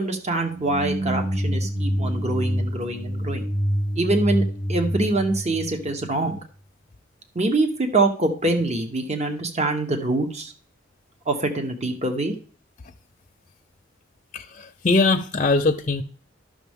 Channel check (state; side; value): normal; both; correlation 0.54